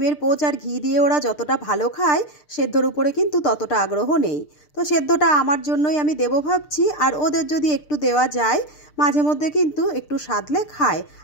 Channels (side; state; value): right; late; 6.7 ms